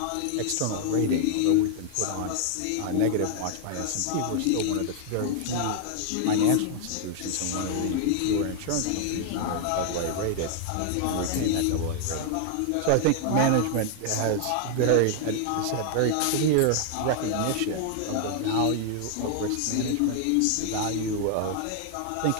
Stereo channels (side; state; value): both; different; correlation 0.00